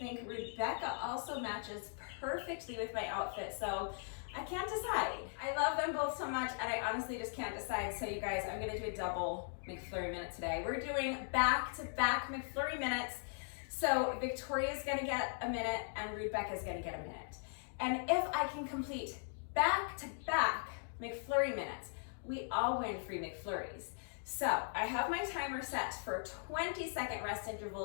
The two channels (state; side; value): silent; right; digital silence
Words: Rebecca also matches perfectly with my outfit, so I can't decide. I love them both so much, and I honestly just can't decide. So you guys, I'm gonna do a double McFlurry minute today. We're doing back-to-back McFlurry minutes. So Victoria's gonna get a minute, and Rebecca's gonna get a minute. And if I can complete back-to-back McFlurry minutes, we all win free McFlurries. So I have my timer set for 20-second rest